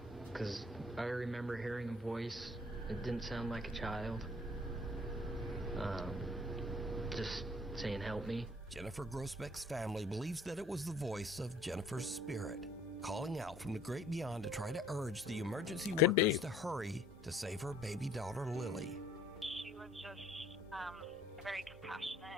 because I remember hearing a voice. It didn't sound like a child. Just saying, help me. Jennifer Grossbeck's family believes that it was the voice of Jennifer's spirit, calling out from the great beyond to try to urge the emergency workers to hurry to save her baby daughter, Lily. She was just a very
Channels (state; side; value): normal; both; correlation 0.57